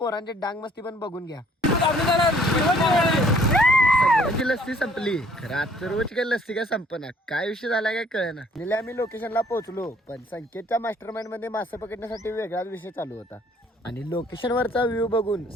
डांग मस्ती पण बघून घ्या. सगळ्यांची लस्सी संपली. खरं आजचं रोज काय लस्सी काय संपना, काय विषय झाला काय कळेना. आम्ही लोकेशनला पोहोचलो, पण संकेतच्या मास्टरमाइंड मध्ये मासे पकडण्यासाठी वेगळाच विषय चालू होता. आणि लोकेशनवरचा व्ह्यू बघून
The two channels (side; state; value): both; normal; correlation 0.59